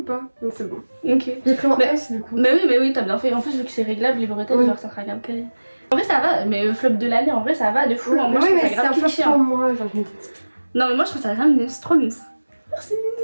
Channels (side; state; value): both; inverted; correlation -1.00